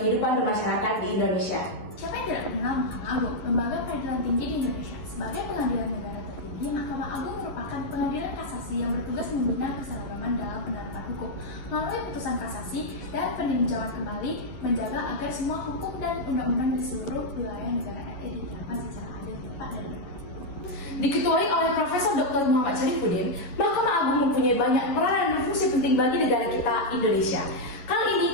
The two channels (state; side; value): late; right; 11 ms